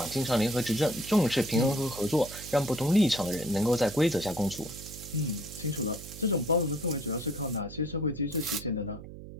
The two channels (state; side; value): noise; right; hum, 14 dB below the sound